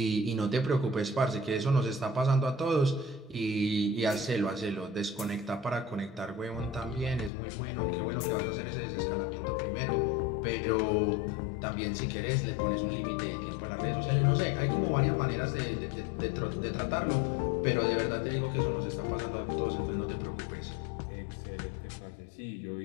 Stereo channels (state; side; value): drops out; right; at 7.3 s